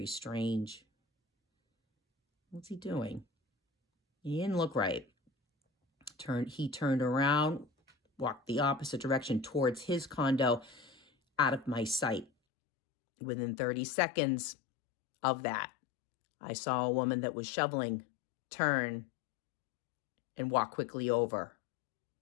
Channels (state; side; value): drops out; right; at 12.3 s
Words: strange. What's he doing? He didn't look right. He turned around, walked the opposite direction towards his condo, out of my sight. Within 30 seconds of that, I saw a woman that was shoveling turn and walk quickly over.